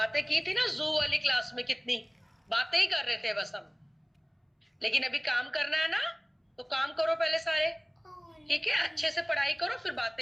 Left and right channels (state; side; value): identical; both; correlation 1.00